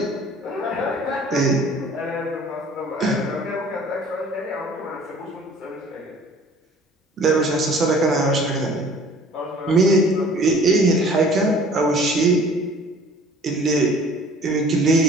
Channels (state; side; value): normal; both; correlation 0.50